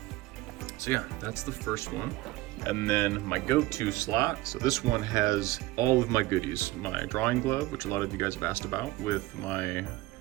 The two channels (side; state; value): left; quieter; 18.7 dB